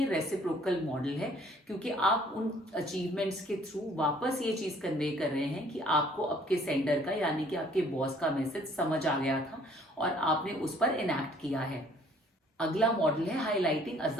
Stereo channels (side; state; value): both; normal; correlation 0.59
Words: रेसिप्रोकल मॉडल है, क्योंकि आप उन अचीवमेंट्स के थ्रू वापस ये चीज कन्वे कर रहे हैं कि आपको आपके सेंडर का यानी कि आपके बॉस का मैसेज समझ आ गया था और आपने उस पर इनैक्ट किया है। अगला मॉडल है हाईलाइटिंग